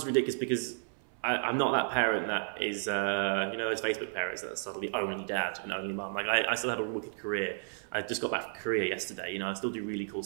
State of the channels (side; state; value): left; silent; 56 dB below the other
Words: ridiculous because I'm not that parent that is, those Facebook parents that are suddenly only dad and only mum. Like I still had a wicked career. I just got back from Korea yesterday. I still do really cool